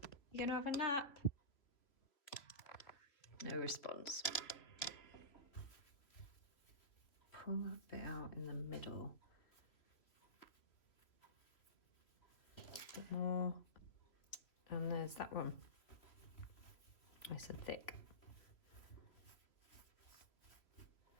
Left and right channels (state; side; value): late; right; 3.0 ms